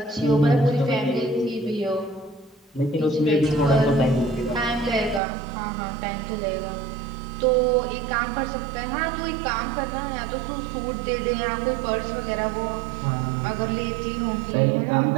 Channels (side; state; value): left; drops out; at 5.2 s